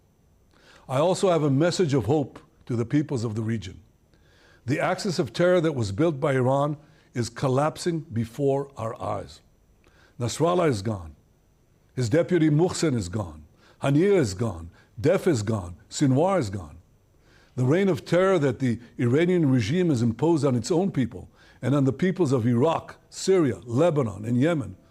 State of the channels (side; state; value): both; identical; correlation 1.00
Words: I also have a message of hope to the peoples of the region. The axis of terror that was built by Iran is collapsing before our eyes. Nasrallah is gone. His deputy Muhsin is gone. Haniyeh is gone. Def is gone. Sinwar is gone. The reign of terror that the Iranian regime has imposed on its own people and on the peoples of Iraq, Syria, Lebanon, and Yemen,